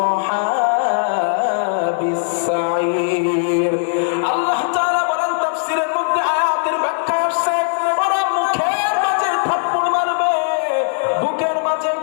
আসহাবিস সাঈর। আল্লাহ তাআলা বলেন তাফসীরের মধ্যে আয়াতের ব্যাখ্যা আসছে, ওরা মুখের মাঝে থাপ্পড় মারবে, বুকের মাঝে,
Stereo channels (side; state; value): right; silent; digital silence